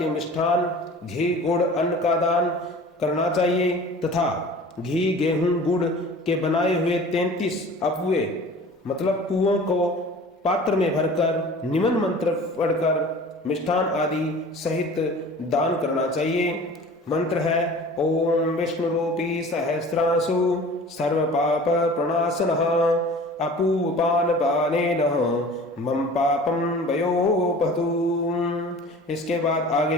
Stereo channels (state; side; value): normal; both; correlation 0.42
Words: मिष्ठान घी गुड़ अन्न का दान करना चाहिए तथा घी गेहूं गुड़ के बनाए हुए 33 अपुए मतलब कुओं को पात्र में भरकर निमन मंत्र पढ़कर मिष्ठान आदि सहित दान करना चाहिए। मंत्र है ओम विष्णु रूपी सहस्रांशु सर्व पाप प्रणाशनः अपूपान पानेन मम पापम वयोपतु। इसके बाद आगे